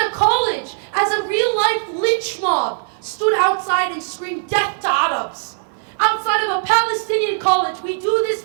a college, as a real-life lynch mob stood outside and screamed death to Arabs. Outside of a Palestinian college, we do this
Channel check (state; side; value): silent; left; 66 dB below the other